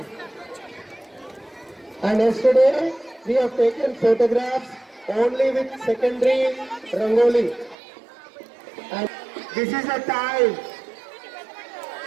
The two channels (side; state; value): left; drops out; at 7.8 s